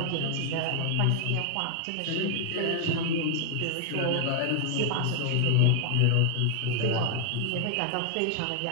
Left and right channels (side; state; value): both; different; correlation 0.00